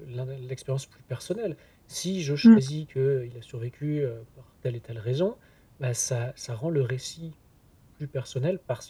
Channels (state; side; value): identical; both; correlation 1.00